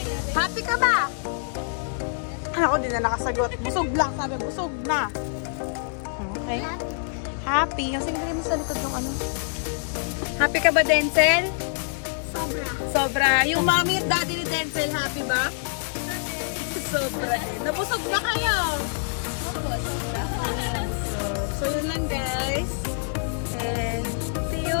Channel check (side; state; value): right; silent; digital silence